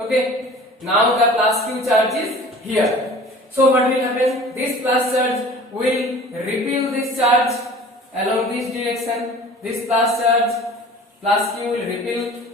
now the plus q charge is here. So what will happen? This plus charge will repel this charge along this direction. This plus charge, plus q will repel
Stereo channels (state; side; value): normal; both; correlation 0.44